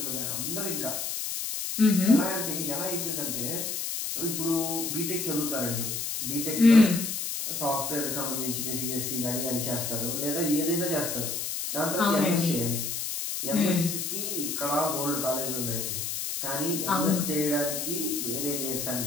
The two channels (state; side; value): noise; left; hiss, 3 dB below the sound